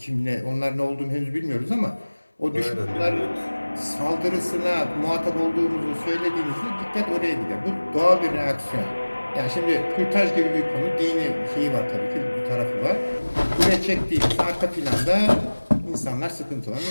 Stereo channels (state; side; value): inverted; both; correlation -1.00